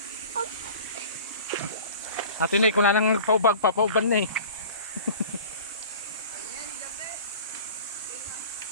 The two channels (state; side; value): inverted; both; correlation -0.42